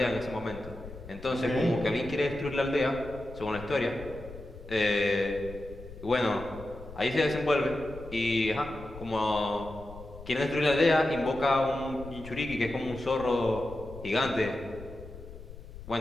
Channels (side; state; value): left; noise; rumble, 15 dB below the sound